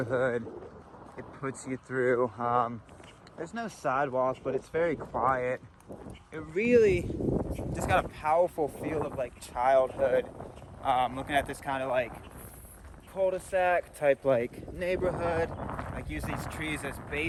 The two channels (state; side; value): identical; both; correlation 1.00